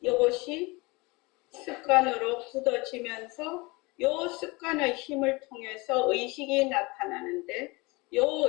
이것이 습관으로 굳어지면서 요 습관의 힘을 통해서 의식이 나타나는데 요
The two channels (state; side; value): quieter; right; 25.1 dB